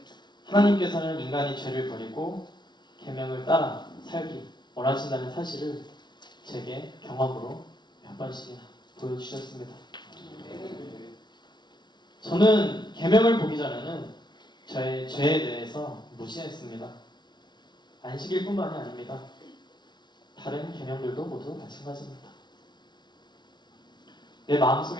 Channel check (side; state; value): right; late; 0.21 ms